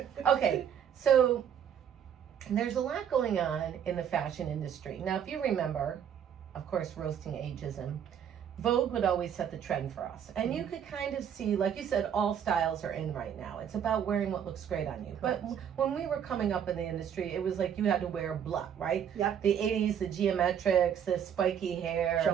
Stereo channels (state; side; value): quieter; left; 8.6 dB